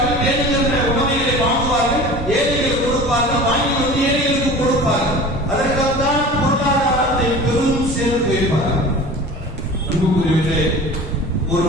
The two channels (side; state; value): both; normal; correlation 0.39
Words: வேணுங்கிற உணவுகளை வாங்குவார்கள், ஏழைகள் கொடுப்பார்கள், வாங்கி வந்து ஏழைகளுக்கு கொடுப்பார்கள். அதற்காகத்தான் பொருளாதாரத்தை பெரும் சேர்த்து வைப்பார்கள். அன்புக்குரியவர்களே, ஒரு